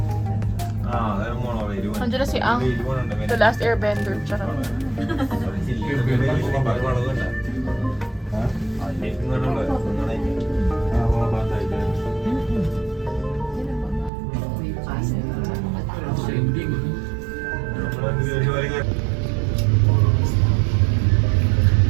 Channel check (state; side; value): drops out; left; at 14.1 s